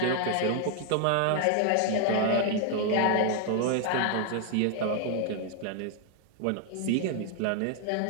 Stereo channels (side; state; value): both; different; correlation 0.00